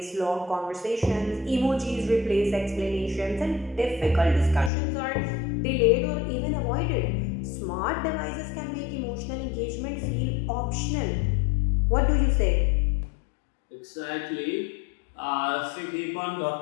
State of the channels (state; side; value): drops out; right; at 4.7 s